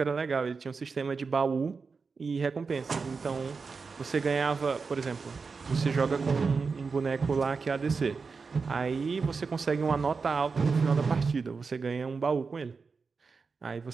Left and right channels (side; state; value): left; quieter; 4.8 dB